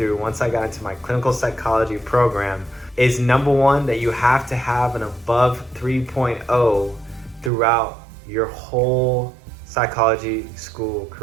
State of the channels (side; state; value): left; drops out; at 7.5 s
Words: once I got into my clinical psychology program is number one, that you have to have an above 3.0 throughout your whole psychology school